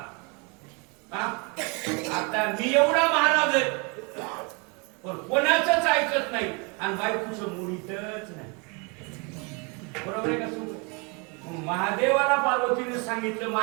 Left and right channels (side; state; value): left; quieter; 31.8 dB